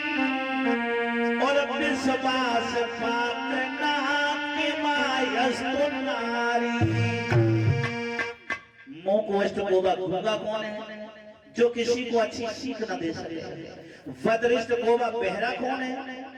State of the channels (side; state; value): both; identical; correlation 1.00